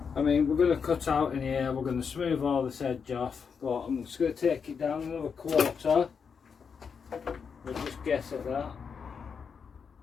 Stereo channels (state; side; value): quieter; right; 6.2 dB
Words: I mean, we're going to cut out in here, we're going to smooth all this edge off, but I'm just going to take it down another quarter. We'll just guess at that.